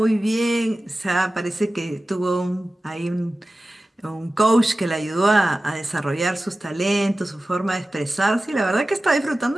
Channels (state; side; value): normal; both; correlation 0.95